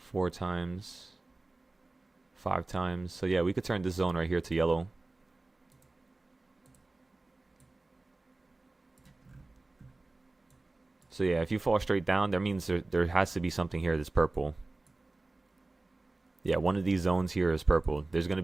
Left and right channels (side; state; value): left; quieter; 3.1 dB